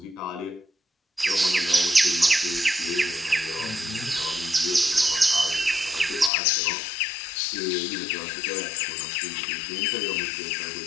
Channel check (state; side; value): drops out; right; at 6.3 s